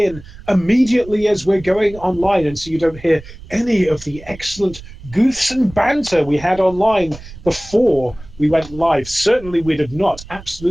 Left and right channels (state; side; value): noise; right; rumble, 17 dB below the sound